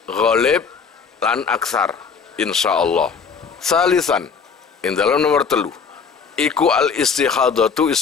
ghalib lan aksar insyaallah. Salisan in dalam nomor 3 iku al istikhadatu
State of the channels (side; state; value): right; quieter; 5.9 dB